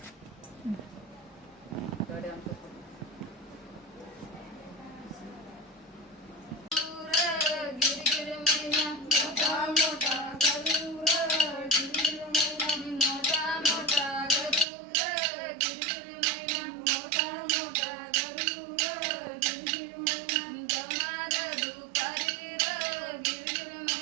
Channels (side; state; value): left; drops out; at 14.7 s